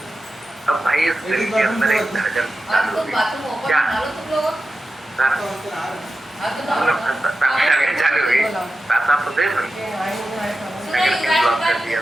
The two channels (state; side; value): normal; both; correlation 0.92